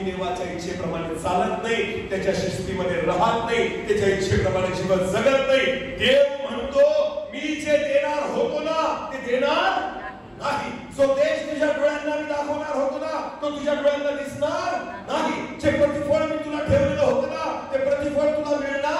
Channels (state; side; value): identical; both; correlation 1.00